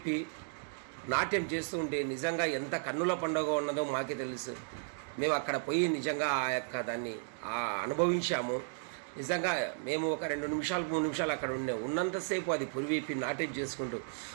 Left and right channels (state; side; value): silent; left; digital silence